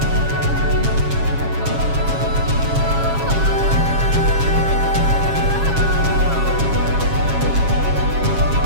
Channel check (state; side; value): late; left; 7.3 ms